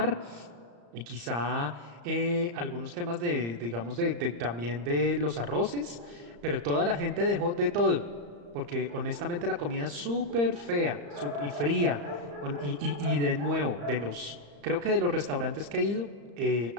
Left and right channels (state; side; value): late; left; 35 ms